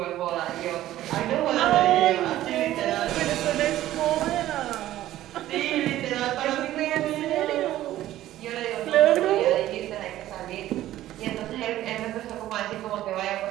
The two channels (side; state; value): left; quieter; 14.1 dB